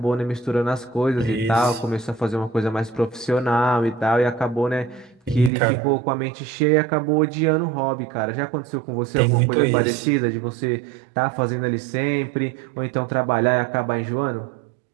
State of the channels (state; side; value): drops out; left; at 5.5 s